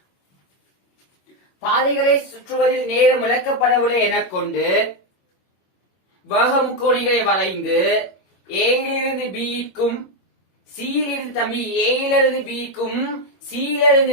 பாதைகளை சுற்றுவதில் நேரம் விளக்கப்படவில்லை என கொண்டு வேகமுக்கோணிகளை வரைந்து ஏயிலிருந்து பிக்கும் சியிலிருந்து தம்பி ஏயிலிருந்து பிக்கும்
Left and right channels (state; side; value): late; right; 21 ms